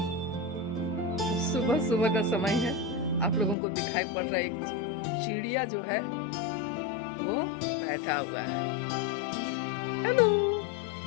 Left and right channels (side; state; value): right; drops out; at 3.6 s